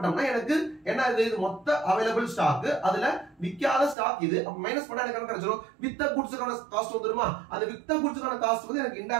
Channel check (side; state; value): left; drops out; at 4.0 s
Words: எனக்கு என்ன இது மொத்த அவைலபிள் ஸ்டாக், அதுல விக்காத ஸ்டாக் இது. அப்ப மைனஸ் பண்ணா எனக்கு என்ன கிடைச்சிரும், வித்த கூட்ஸ்க்கான காஸ்ட் வந்துருமா. அந்த வித்த கூட்ஸ்க்கான காஸ்ட் வந்து எனக்கு